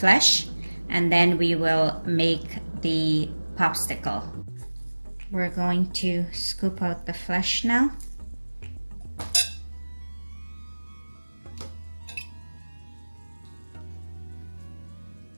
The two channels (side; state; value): both; inverted; correlation -1.00